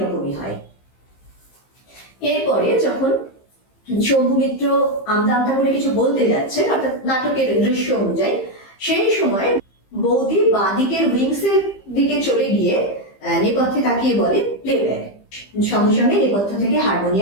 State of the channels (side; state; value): right; late; 15 ms